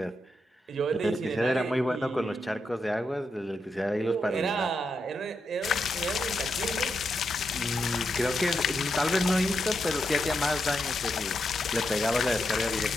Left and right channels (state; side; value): normal; both; correlation 0.84